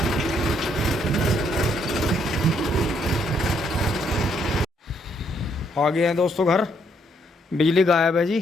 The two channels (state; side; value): normal; both; correlation 0.71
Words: आ गए हैं दोस्तों घर, बिजली गायब है